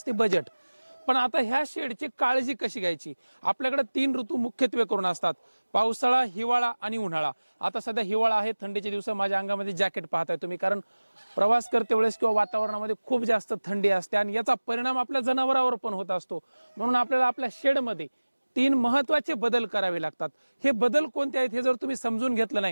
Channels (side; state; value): both; inverted; correlation -1.00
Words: बजेट। पण आता ह्या शेडची काळजी कशी घ्यायची? आपल्याकडे 3 ऋतू मुख्यत्वे करून असतात, पावसाळा, हिवाळा आणि उन्हाळा। आता सध्या हिवाळा आहे, थंडीचे दिवस, माझ्या अंगामध्ये जॅकेट पाहताय तुम्ही, कारण प्रवास करते वेळेस किंवा वातावरणामध्ये खूप जास्त थंडी असते आणि याचा परिणाम आपल्या जनावरांवर पण होत असतो। म्हणून आपल्याला आपल्या शेडमध्ये 3 महत्त्वाचे बदल करावे लागतात। हे बदल कोणते आहेत हे जर तुम्ही समजून घेतलं